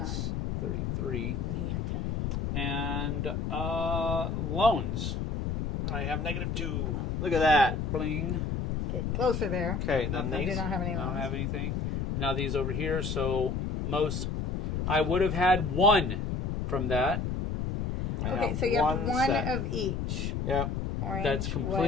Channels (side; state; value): left; noise; rumble, 2 dB below the sound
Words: 33. and he had 10. And loans. I have -2. Look at that. Bling. Getting closer there. Okay, then I do these. not have any I don't loans. have anything. Now these over here, so I would have had one from that. Okay, so you have one set. of each. Yep. Orange, That's